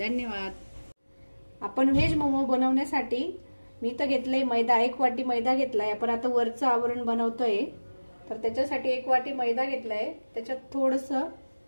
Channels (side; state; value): both; inverted; correlation -1.00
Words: आपण व्हेज मोमो बनवण्यासाठी मी तर घेतलंय मैदा, 1 वाटी मैदा घेतलाय। आपण आता वरचं आवरण बनवतोय तर त्याच्यासाठी 1 वाटी मैदा घेतलाय, त्याच्यात थोडंसं